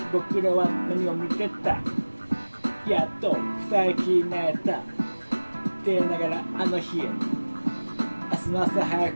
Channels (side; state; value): both; inverted; correlation -1.00